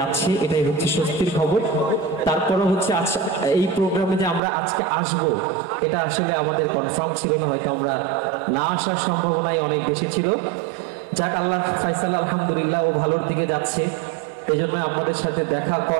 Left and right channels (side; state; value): left; drops out; at 4.4 s